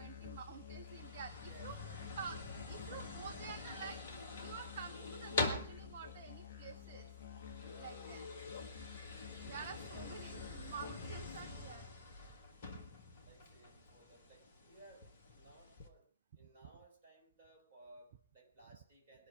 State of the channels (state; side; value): inverted; both; correlation -0.49